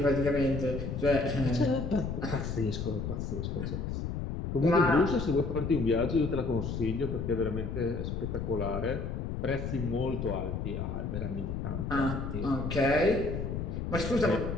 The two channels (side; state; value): left; noise; rumble, 3 dB below the sound